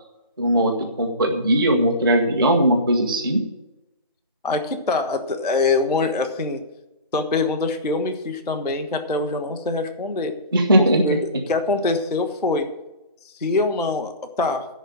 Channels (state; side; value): inverted; both; correlation -0.34